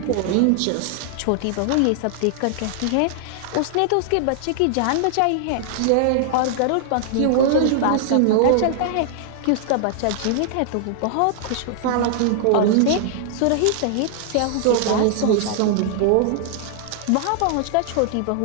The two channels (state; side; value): different; both; correlation -0.01